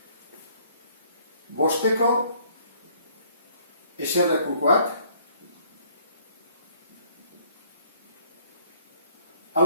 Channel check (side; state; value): both; inverted; correlation -0.60